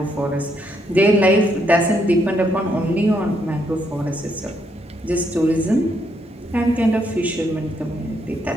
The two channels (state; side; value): normal; both; correlation 0.75